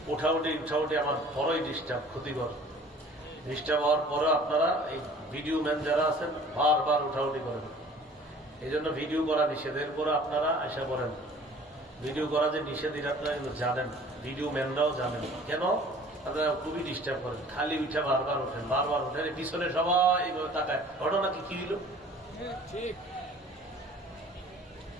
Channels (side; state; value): both; normal; correlation 0.49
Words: উঠাউটি আমার বড়ই ডিস্টার্ব, ক্ষতিকর। ডিস্টার্ব হওয়ার পরে আপনারা এই ভিডিও ম্যান যারা আছেন বারবার উঠাউটি করেন, এই জন্য ভিডিও করা নিষেধ। এরপরে আপনারা আশা করেন ভিডিও করা যে নিষেধ এটা আপনারা জানেন, ভিডিও ম্যানরাও জানেন। কেন? আপনারা খুবই ডিস্টার্ব করেন, খালি উঠে বারবার ওঠেন, বারবার ওঠেন, পিছনে সবাই তাকায়, ঘটনা কি হইল?